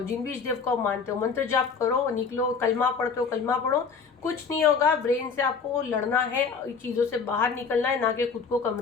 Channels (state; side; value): quieter; right; 5.4 dB